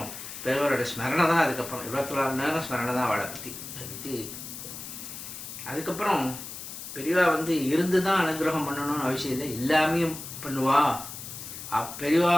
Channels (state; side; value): noise; left; hiss, 10 dB below the sound